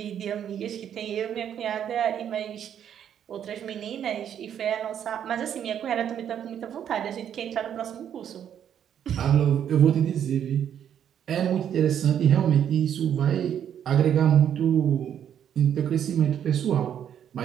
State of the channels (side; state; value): left; quieter; 9.3 dB